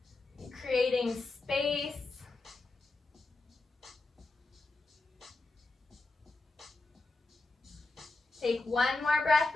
creating space. Take one more breath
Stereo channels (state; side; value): quieter; right; 3.4 dB